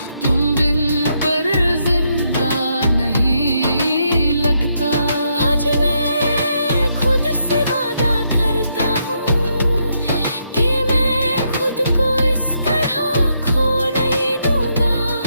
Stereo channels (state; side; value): inverted; both; correlation -0.77